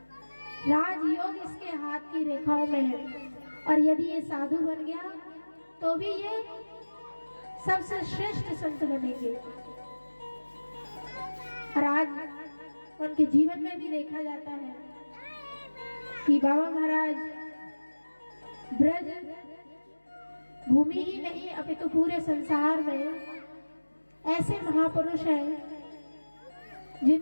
राजयोग इसके हाथ की रेखाओं में है, और यदि ये साधु बन गया तो भी ये सबसे श्रेष्ठ संत बनेंगे। और आज उनके जीवन में भी देखा जाता है कि बाबा महाराज ब्रज भूमि ही नहीं अपितु पूरे संसार में ऐसे महापुरुष हैं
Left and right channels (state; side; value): inverted; both; correlation -1.00